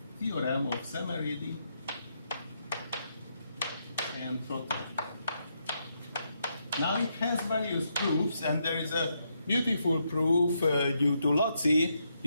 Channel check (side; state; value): both; inverted; correlation -0.79